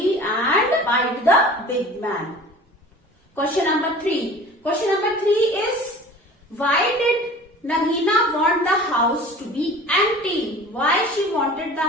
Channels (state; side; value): normal; both; correlation 0.42